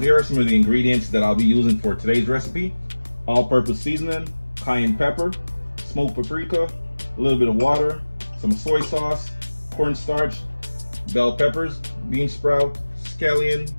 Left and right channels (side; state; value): both; inverted; correlation -1.00